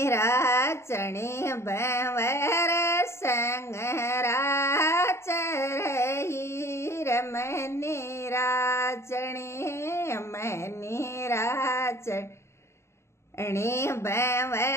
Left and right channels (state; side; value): late; right; 0.13 ms